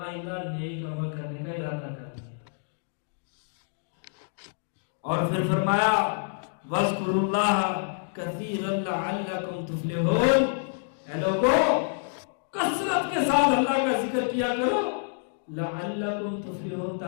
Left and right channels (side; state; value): right; silent; digital silence